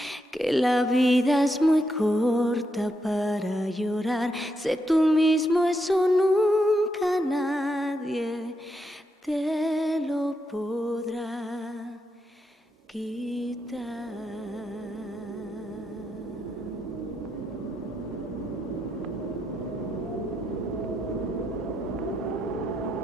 que la vida es muy corta para llorar. Sé tú mismo, eso no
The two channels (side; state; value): both; normal; correlation 0.81